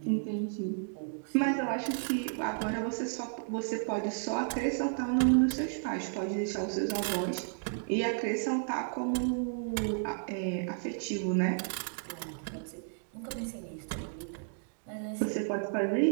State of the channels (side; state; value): left; silent; digital silence